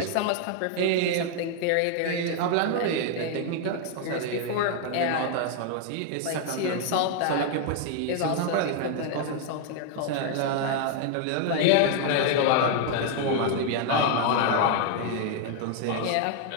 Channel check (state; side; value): different; both; correlation 0.00